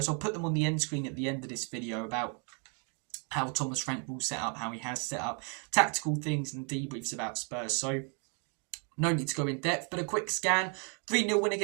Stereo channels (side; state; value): left; quieter; 38.2 dB